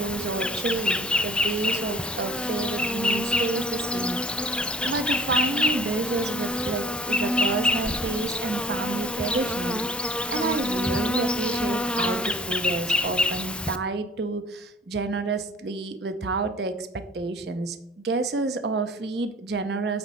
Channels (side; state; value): both; normal; correlation 0.50